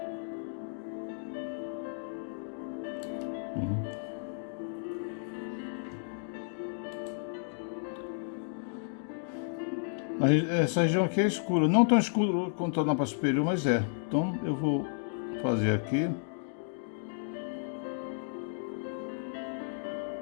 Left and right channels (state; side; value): silent; right; digital silence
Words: Essa região aqui é escura, não tão escuro quanto na parte superior, mas é. Então eu vou fazer aqui.